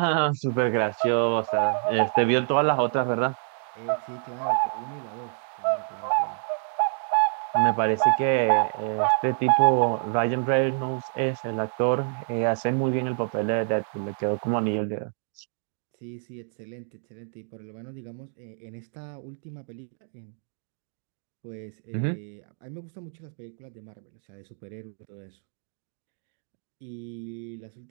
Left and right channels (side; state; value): left; silent; 60 dB below the other